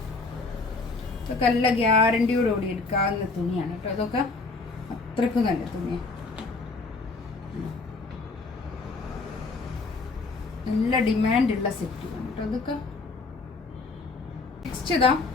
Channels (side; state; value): right; quieter; 3.9 dB